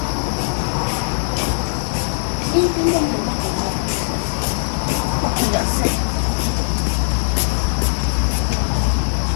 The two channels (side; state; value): right; silent; digital silence